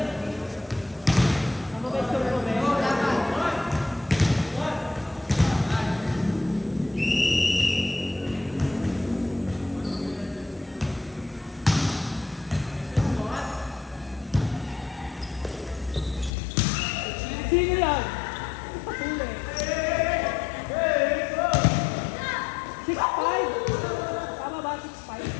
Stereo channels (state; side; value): drops out; right; at 16.3 s